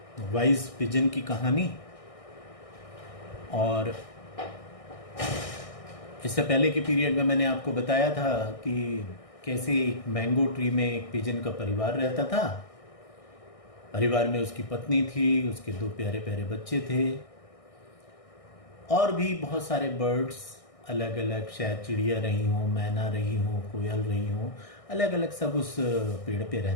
वाइज पिजन की कहानी, और इससे पहले के पीरियड में मैंने आपको बताया था कि कैसे एक मैंगो ट्री में एक पिजन का परिवार रहता था। परिवार में उसकी पत्नी थी, उसके दो प्यारे प्यारे बच्चे थे, और भी बहुत सारे बर्ड्स, अलग अलग, शायद चिड़िया रही हो, मैना रही हो, कोयल रही हो, अलग अलग सब उस पेड़ पे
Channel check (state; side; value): late; right; 1.6 ms